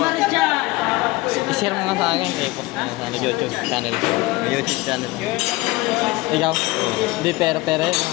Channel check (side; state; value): right; quieter; 21.0 dB